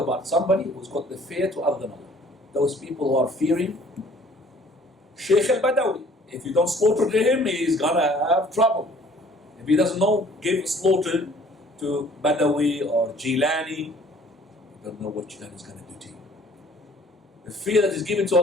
somebody who's got the fear to other than Allah. Those people who are fearing Sheikh al-Badawi. If you don't slaughter him, he's gonna have trouble. If he doesn't know, give slaughter to Badawi or Jilani, you don't know what Jilani is going to do to you. The fear that is given to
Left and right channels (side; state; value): both; normal; correlation 0.55